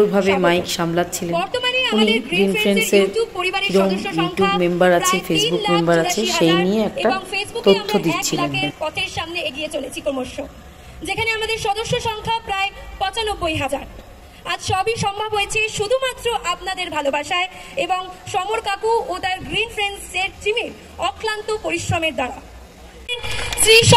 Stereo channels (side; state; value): both; identical; correlation 1.00